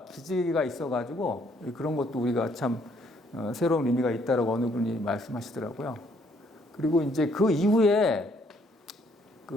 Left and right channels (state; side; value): normal; both; correlation 0.67